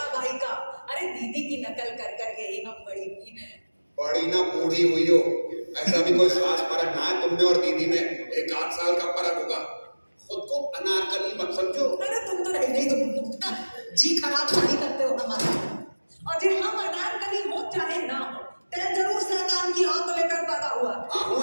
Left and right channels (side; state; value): both; inverted; correlation -1.00